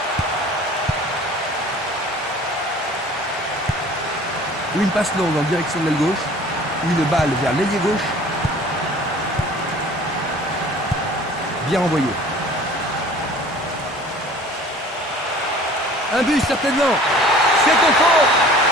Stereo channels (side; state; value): both; normal; correlation 0.47